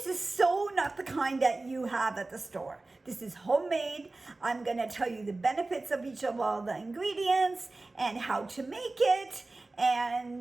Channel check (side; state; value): left; quieter; 3.2 dB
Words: is so not the kind that you have at the store. This is homemade. I'm gonna tell you the benefits of each of all the ingredients and how to make it,